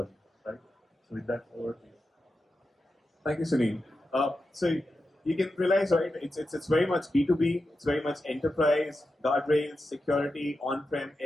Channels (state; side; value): normal; both; correlation 0.90